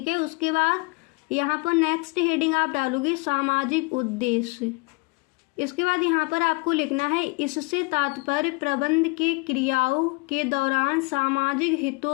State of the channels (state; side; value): quieter; right; 28.5 dB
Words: है, उसके बाद यहाँ पर नेक्स्ट हेडिंग आप डालोगे सामाजिक उद्देश्य। इसके बाद यहाँ पर आपको लिखना है इससे तात्पर्य प्रबंध के क्रियाओं के दौरान सामाजिक